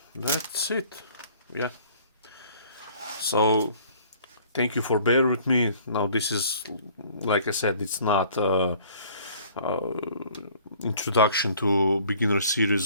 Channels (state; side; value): inverted; both; correlation -0.54